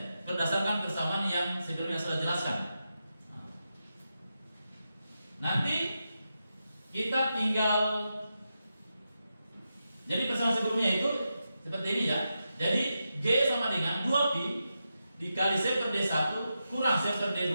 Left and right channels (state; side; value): inverted; both; correlation -0.88